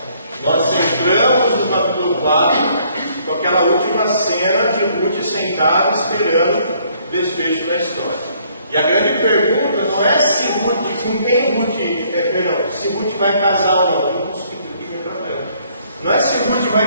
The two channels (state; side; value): inverted; both; correlation -0.64